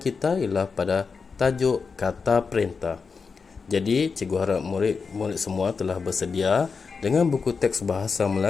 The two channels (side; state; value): right; quieter; 5.1 dB